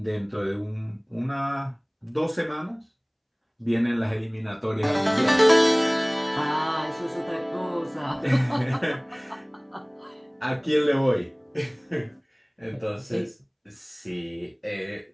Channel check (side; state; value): both; identical; correlation 1.00